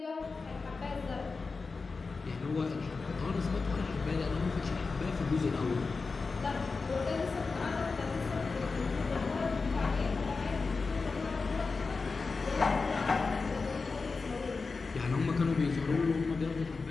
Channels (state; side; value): quieter; right; 4.3 dB